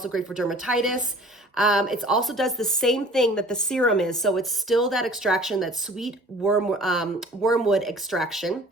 great for dermatitis. It also does the same thing that the serum is. So it's still that extraction, that sweet wormwood extraction.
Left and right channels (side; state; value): both; normal; correlation 0.49